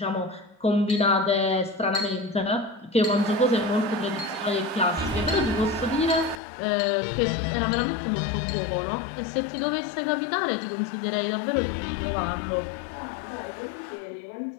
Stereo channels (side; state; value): right; drops out; at 6.4 s